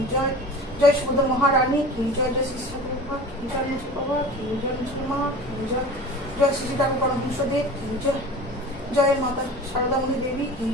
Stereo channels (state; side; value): normal; both; correlation 0.38